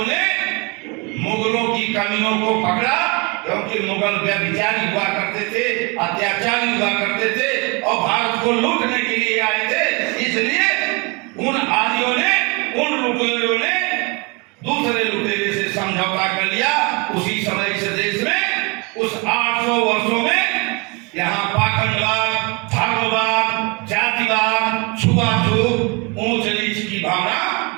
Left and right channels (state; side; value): quieter; left; 29.9 dB